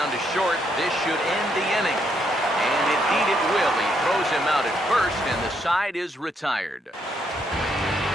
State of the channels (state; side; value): normal; both; correlation 0.75